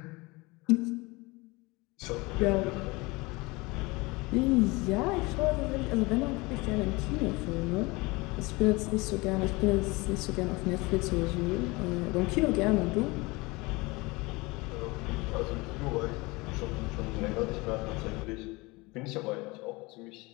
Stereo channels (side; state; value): right; quieter; 24.1 dB